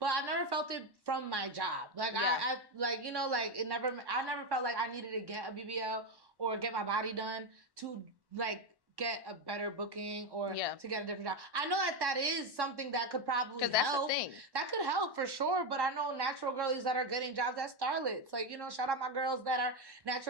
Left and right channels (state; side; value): late; left; 1.1 ms